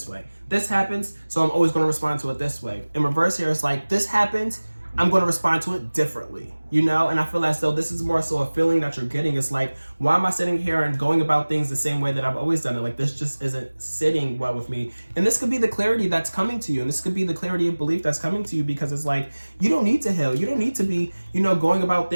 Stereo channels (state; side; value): inverted; both; correlation -1.00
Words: way. This happens, so I'm always going to respond to it this way. In reverse here, it's like, this happens, I'm going to respond to it differently, you know? And I feel as though this is more so a feeling that you're getting. It's like, why am I sitting here and going about things the same way that I've always done it? Like, this just isn't sitting well with me. And this could be the clarity that's coming to you. And this could be the clarity of belief that's coming to you, because it's like, you don't need to heal. You don't need to be, you know, going about